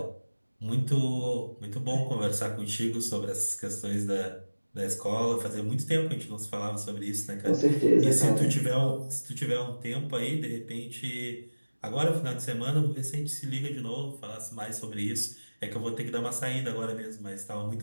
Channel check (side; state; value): both; inverted; correlation -1.00